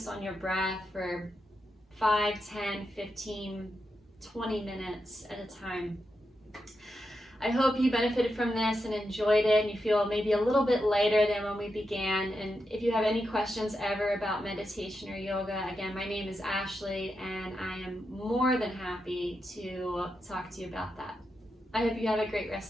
on your breath for 5, 10, 15, 20 minutes at a time. I hope you benefited from this and enjoyed it, and you feel maybe a little bit lighter than when we began. And if you have any questions ever about meditation or yoga, again, my name is Ashley, and I am more than happy to talk to you about that. I hope you have a great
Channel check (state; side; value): normal; both; correlation 0.86